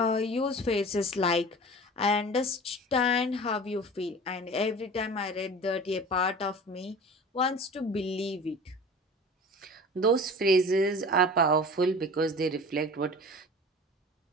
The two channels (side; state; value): both; normal; correlation 0.39